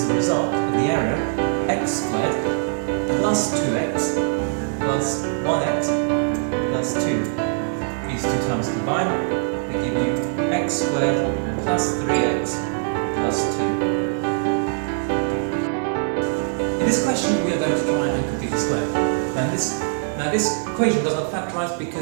the result of the area x squared plus 2x plus 1x plus 2. These two terms combined, they give you x squared plus 3x plus 2. In this question, we are going to try and complete the square. Now this equation does not factorise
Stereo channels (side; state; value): left; silent; 60 dB below the other